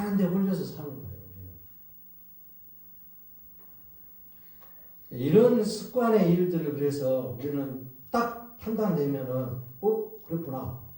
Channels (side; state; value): both; identical; correlation 1.00